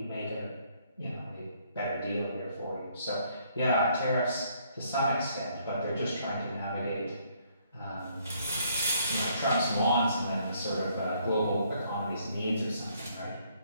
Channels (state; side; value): inverted; both; correlation -0.67